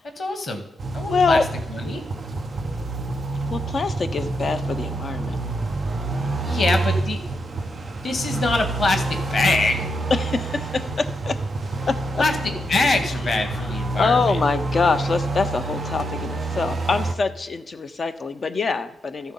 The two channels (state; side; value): normal; both; correlation 0.83